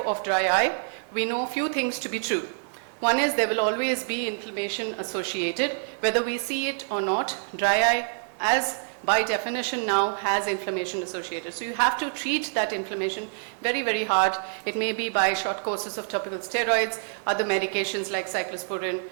of dry eye, we know a few things to be true. One is there will always be inflammation associated, whether we see it or not. Dry eye, as by definition now, has inflammation associated. So you have to treat that inflammation very, very hard. It may be by short courses of topical steroids, other medications like cyclosporin,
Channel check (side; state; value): left; silent; digital silence